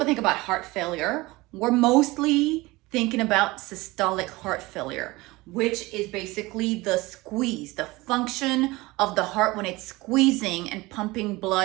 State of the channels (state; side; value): quieter; left; 21.3 dB